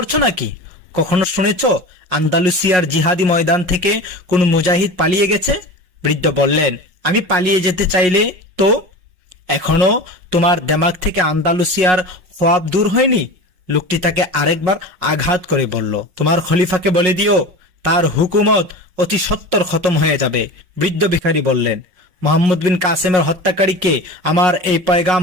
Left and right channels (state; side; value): late; left; 5.5 ms